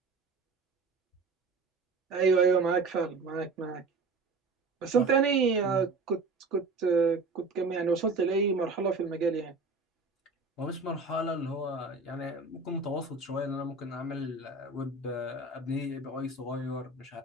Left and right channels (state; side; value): quieter; left; 3.9 dB